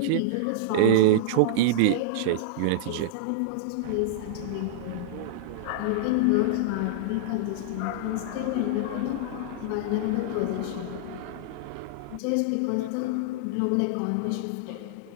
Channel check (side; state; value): both; different; correlation -0.02